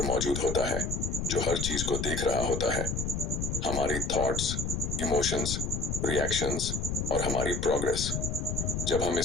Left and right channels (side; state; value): left; noise; rumble, 2 dB below the sound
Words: मौजूद होता है जो हर चीज को देख रहा होता है, हमारी थॉट्स, इमोशंस, रिएक्शंस और हमारी प्रोग्रेस। जब हम